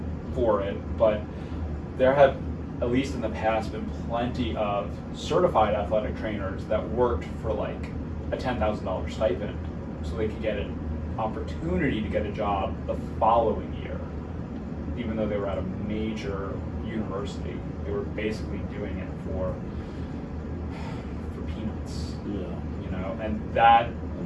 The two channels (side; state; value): both; identical; correlation 1.00